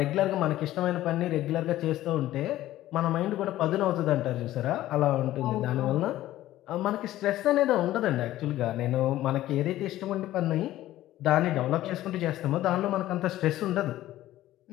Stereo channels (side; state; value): right; quieter; 14.6 dB